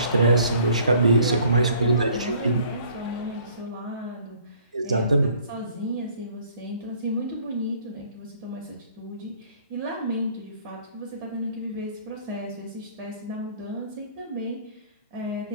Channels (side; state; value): both; inverted; correlation -0.56